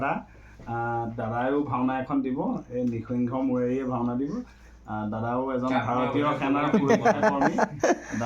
দাদাইও ভাওনা এখন দিব, এই নিসিংহ মূৰেৰিয়ে ভাওনা দিব। দাদাও এজন ভাৰতীয় সেনাৰ কৰ্মী,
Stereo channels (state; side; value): identical; both; correlation 1.00